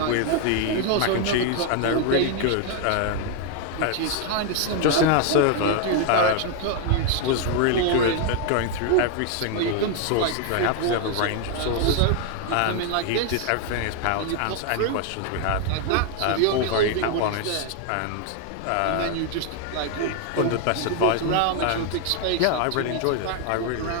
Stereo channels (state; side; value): different; both; correlation 0.00